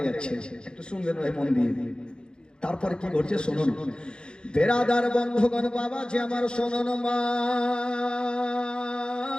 যাচ্ছে। একটু শুনবেন ভাই মন দিয়ে। তারপরে কি ঘটছে শুনুন। বেরাদার বন্ধুগণ, বাবা যে আমার শুনুন, মা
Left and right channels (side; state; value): right; late; 0.049 ms